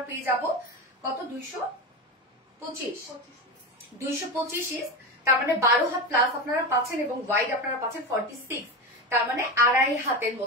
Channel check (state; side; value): normal; both; correlation 0.20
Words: পেয়ে যাব কত 225 ইঞ্চ, তার মানে 12 হাত প্লাস আপনারা পাচ্ছেন, এবং ওয়াইড আপনারা পাচ্ছেন 46, তার মানে 2.5 হাতের